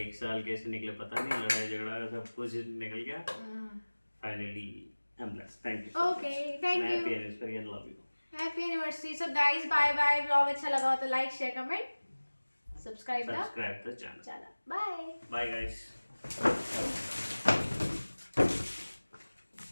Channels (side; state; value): both; inverted; correlation -1.00